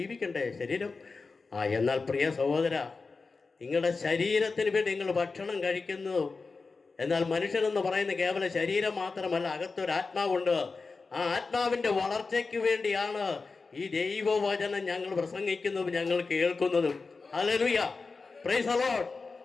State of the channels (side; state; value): right; quieter; 4.2 dB